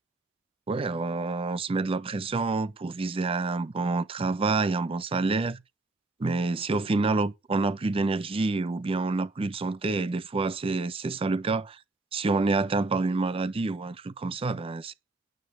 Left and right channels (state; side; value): quieter; left; 3.1 dB